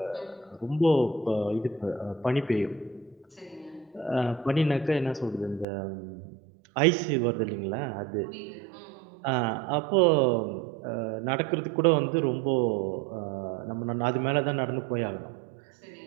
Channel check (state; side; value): drops out; left; at 5.7 s